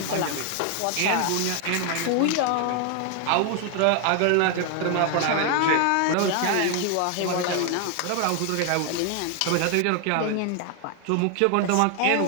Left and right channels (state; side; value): different; both; correlation 0.00